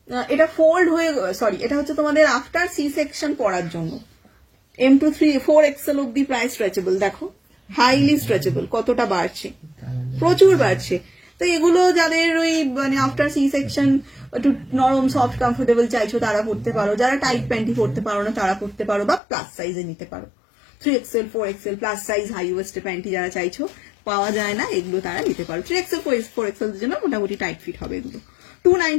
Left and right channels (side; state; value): right; drops out; at 19.2 s